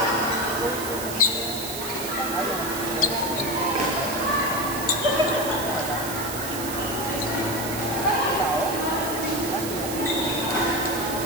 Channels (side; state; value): right; noise; hiss, 7 dB below the sound